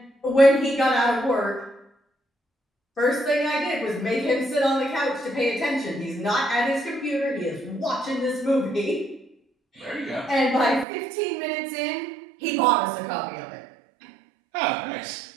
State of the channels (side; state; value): left; drops out; at 10.9 s